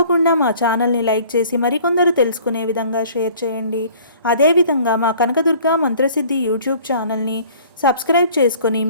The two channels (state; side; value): inverted; both; correlation -0.51